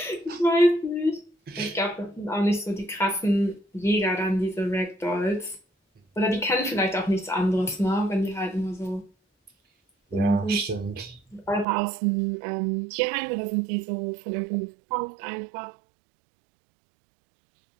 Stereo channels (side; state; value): left; drops out; at 11.7 s